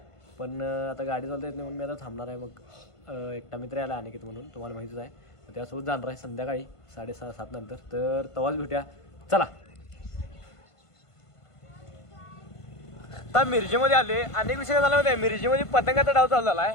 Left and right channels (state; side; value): late; right; 1.5 ms